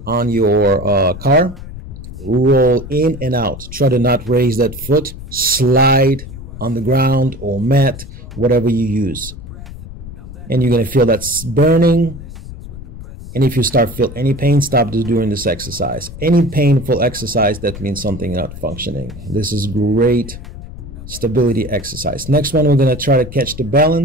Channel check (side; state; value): left; noise; rumble, 13 dB below the sound